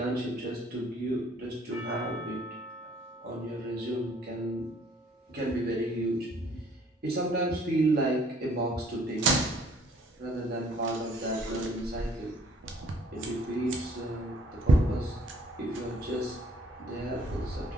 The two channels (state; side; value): normal; both; correlation 0.59